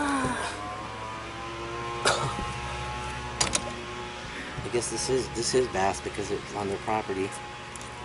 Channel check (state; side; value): identical; both; correlation 1.00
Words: I guess this is bass because it's on their property.